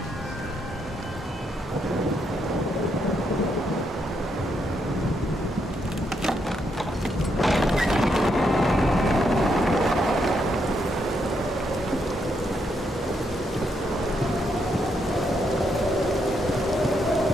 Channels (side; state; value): both; normal; correlation 0.78